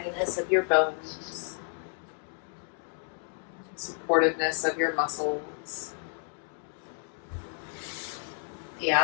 of your bones, supportiveness of your muscles, the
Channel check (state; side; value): silent; right; 57 dB below the other